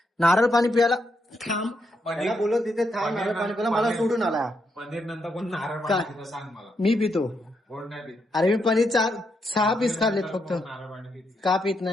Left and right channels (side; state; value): both; normal; correlation 0.80